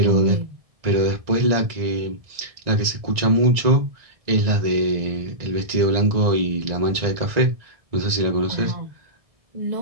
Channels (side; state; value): left; late; 1.9 ms